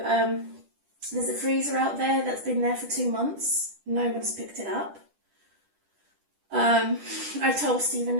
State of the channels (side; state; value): left; late; 10 ms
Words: there's a freezer out there that's been there for 2 months. No one's picked it up. I told Stephen